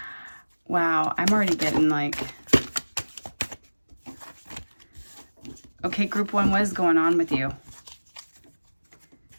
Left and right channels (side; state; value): both; inverted; correlation -1.00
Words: Wow, I'm already getting like... Okay, group one, what is going on with you?